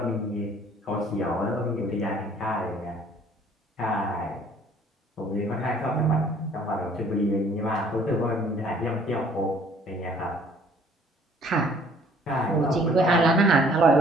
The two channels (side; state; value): both; normal; correlation 0.57